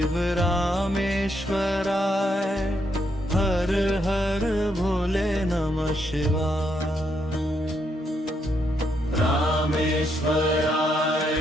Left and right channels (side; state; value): both; normal; correlation 0.77